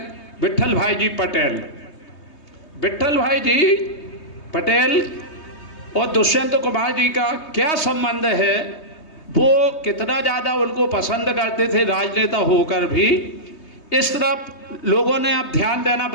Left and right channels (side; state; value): right; late; 3.2 ms